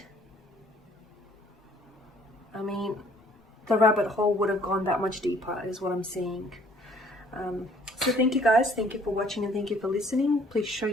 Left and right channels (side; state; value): both; normal; correlation 0.59